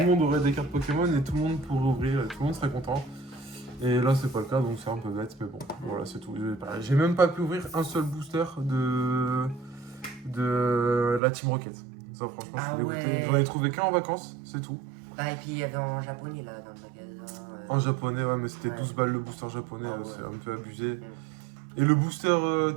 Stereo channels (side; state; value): left; drops out; at 11.2 s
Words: le monde aurait des cartes Pokémon et tout le monde pourrait ouvrir et tout le monde serait content. Et là, c'est pas le cas, donc c'est un peu bête, mais bon, voilà, c'est tout. J'ai même pas pu ouvrir un seul booster de la Team Rocket. Ça, franchement, Ah je suis dégoûté. ouais. J'en ai trouvé qu'un en vacances, c'est tout. Bah, et puis il y avait en japonais là, dans le magasin. En japonais, ouais, mais c'était Ouais. 12 balles le booster japonais, Ah ouais. c'est un peu abusé. Et le booster